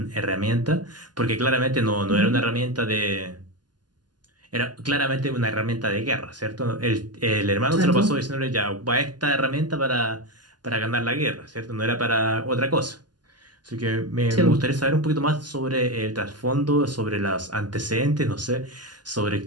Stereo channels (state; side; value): late; left; 0.70 ms